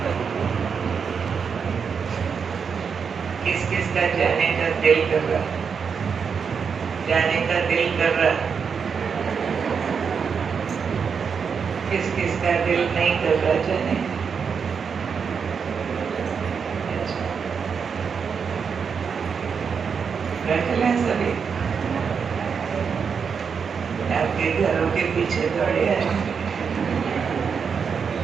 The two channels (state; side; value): quieter; left; 6.2 dB